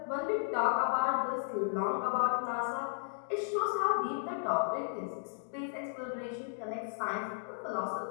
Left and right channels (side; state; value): right; silent; digital silence